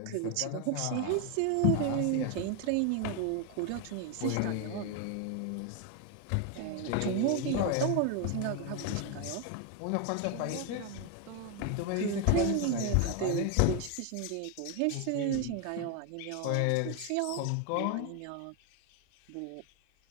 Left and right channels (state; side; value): different; both; correlation 0.01